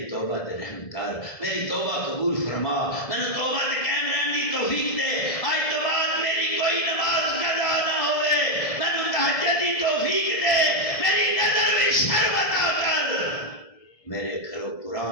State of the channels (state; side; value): late; right; 1.7 ms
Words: توبہ تے رحم کر، میری توبہ قبول فرما، میں نے توبہ تے قائم رہن دی توفیق دے، آج تو بعد میری کوئی نماز قضا نہ ہوئے، میں نے تہجد دی توفیق دے، میری نظر میں شرم عطا کر، میرے گھروں